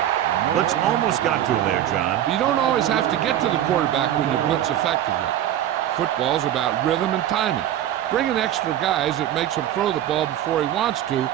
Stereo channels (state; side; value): quieter; left; 11.6 dB